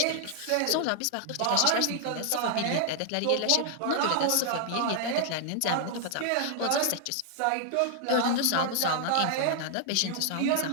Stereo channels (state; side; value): different; both; correlation 0.00